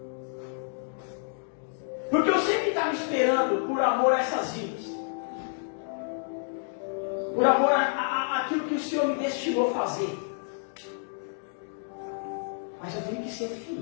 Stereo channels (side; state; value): right; silent; digital silence